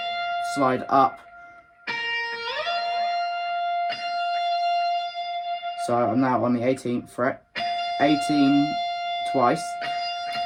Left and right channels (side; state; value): both; identical; correlation 1.00